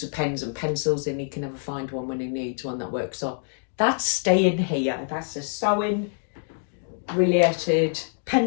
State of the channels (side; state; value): right; silent; 61 dB below the other